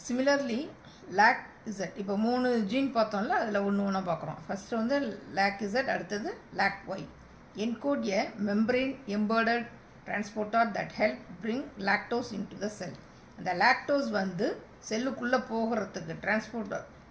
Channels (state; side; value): identical; both; correlation 1.00